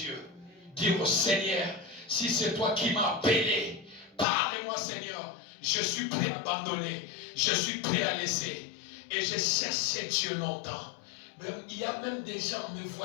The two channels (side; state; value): right; drops out; at 4.2 s